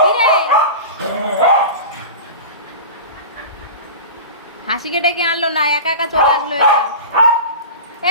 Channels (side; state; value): both; inverted; correlation -0.31